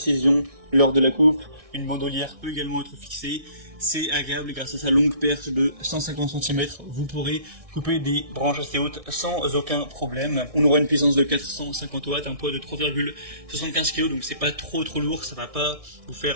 lors de la coupe. Une bandolière peut également être fixée. C'est agréable grâce à sa longue perche de 150 cm. Vous pourrez couper des branches assez hautes sans aucun problème. On aura une puissance de 450 watts, un poids de 3,75 kg, donc c'est pas trop lourd. Ça va pas vous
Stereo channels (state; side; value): late; left; 1.6 ms